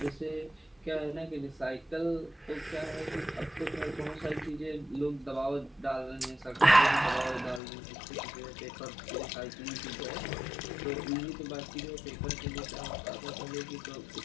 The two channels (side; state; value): right; drops out; at 7.6 s